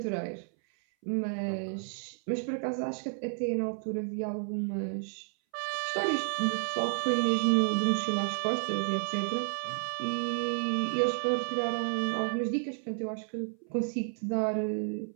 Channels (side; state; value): left; silent; 57 dB below the other